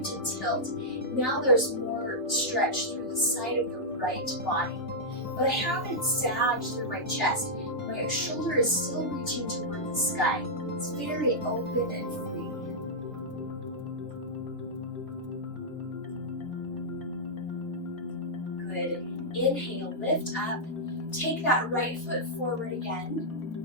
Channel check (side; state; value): right; late; 3.3 ms